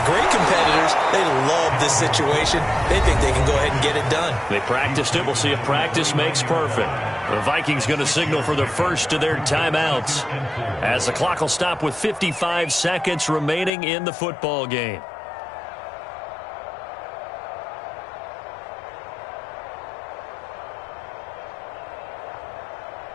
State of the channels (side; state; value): right; drops out; at 13.7 s